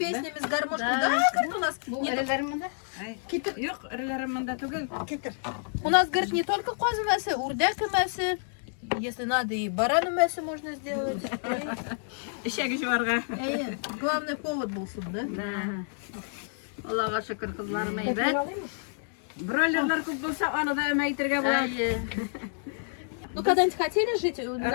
с гармошкой? Да, говорит, у нас Бу не эреләремдә. Yok, ырыларымында түгел. У нас, говорит, не только козы мясо, урдяк мясо. Если надо, и барану мясо можно сделать. Ишәге жуарга. Главный повод был суд, да? Аллага шөкер кызларым Метрін әйбәт. алайынмы? Бройлерлар күп булса, аны да мәйтергә була. Ну, когда-нибудь хотели жить?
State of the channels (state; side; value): silent; right; digital silence